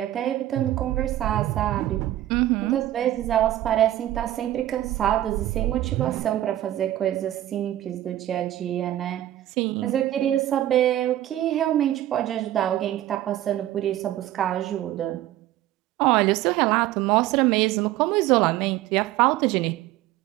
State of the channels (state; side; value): quieter; left; 13.8 dB